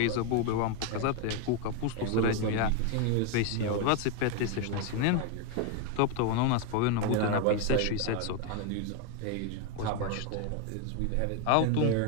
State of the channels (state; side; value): different; both; correlation 0.01